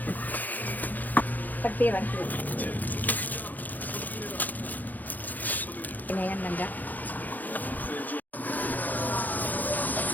Pirang po. Pinayan lang ga.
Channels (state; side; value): late; right; 0.083 ms